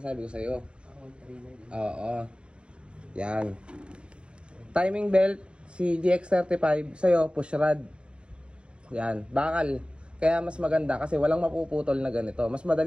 ko sa'yo. 139. Oo. Yan. Timing belt, si GX35, sa'yo, push rod. Yan. Bakal. Kaya mas maganda kasi walang mapuputol na ganito. Mas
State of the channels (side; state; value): left; late; 0.056 ms